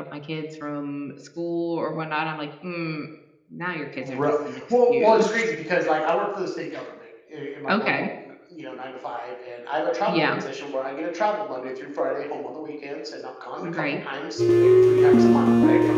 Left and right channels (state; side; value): identical; both; correlation 1.00